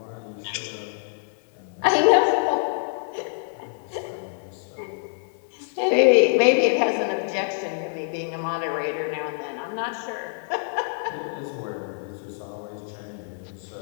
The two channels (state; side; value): silent; right; digital silence